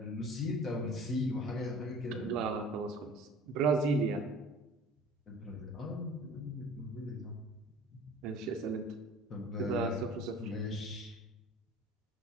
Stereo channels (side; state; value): both; normal; correlation 0.45